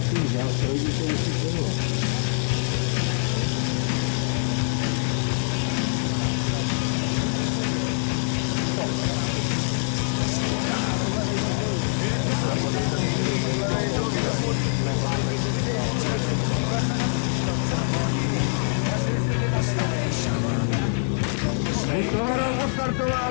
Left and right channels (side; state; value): right; silent; digital silence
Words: si vzal, to vidíte, jestli to bylo.